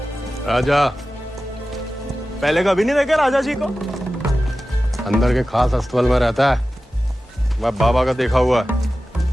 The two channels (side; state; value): both; normal; correlation 0.95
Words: राजा। पहले कभी नहीं देखे राजा जी को? अंदर के खास अस्तबल में रहता है, मैं बाबा का देखा हुआ है।